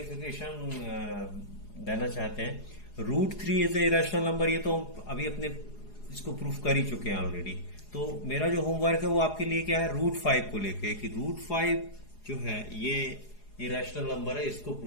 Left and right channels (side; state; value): right; late; 4.8 ms